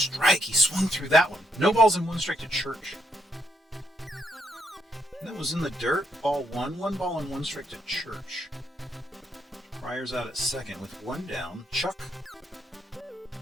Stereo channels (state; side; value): normal; both; correlation 0.76